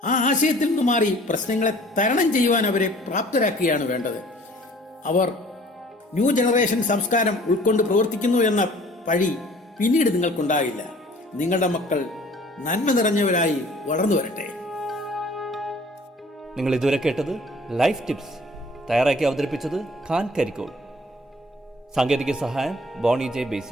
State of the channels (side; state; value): both; normal; correlation 0.52